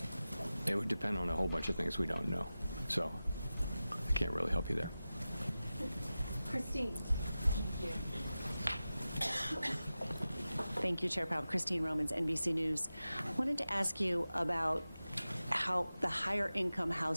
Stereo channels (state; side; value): inverted; both; correlation -0.95